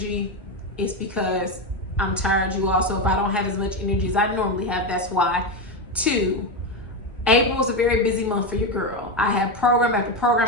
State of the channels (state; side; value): normal; both; correlation 0.12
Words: it's because I'm tired, you all. So if I don't have as much energy as I normally have, that's why. Two, April is a very busy month for your girl. I have program after program,